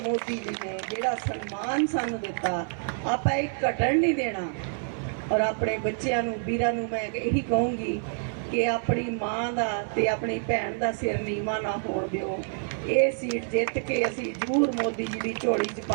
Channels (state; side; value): silent; left; 60 dB below the other